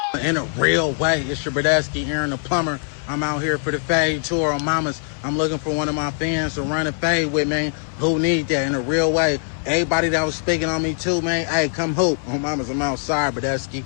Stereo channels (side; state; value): right; silent; 61 dB below the other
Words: in a real way. It's your Bradesky, Aaron the Plumber. I'm out here for the fade tour on Mamas. I'm looking for one of my fans to run a fade with, man. Who need that in a real way? Everybody that was speaking on me too, man. Hey, come hoop. On Mamas, I'm outside, Bradesky.